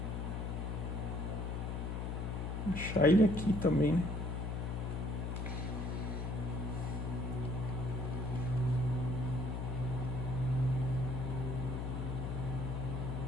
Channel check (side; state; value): left; noise; hum, 2 dB below the sound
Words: Vou deixar ele aqui também.